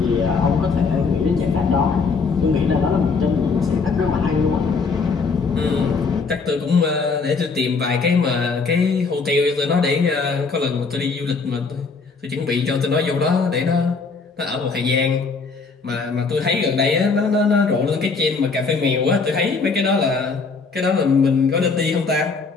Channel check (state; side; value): quieter; right; 4.6 dB